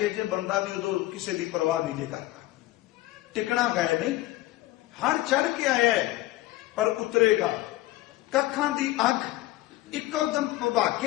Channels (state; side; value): quieter; right; 17.1 dB